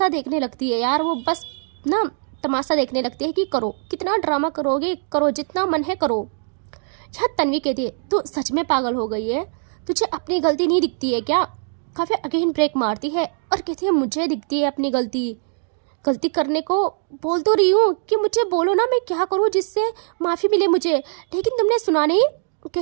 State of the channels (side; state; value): left; silent; digital silence